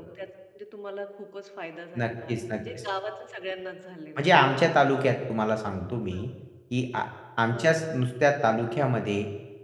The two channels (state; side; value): identical; both; correlation 1.00